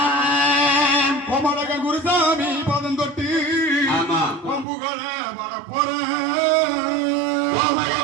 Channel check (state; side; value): drops out; left; at 4.7 s